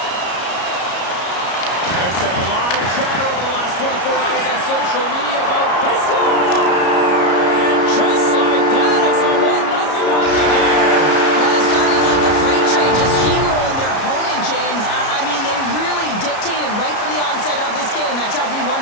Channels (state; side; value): late; right; 33 ms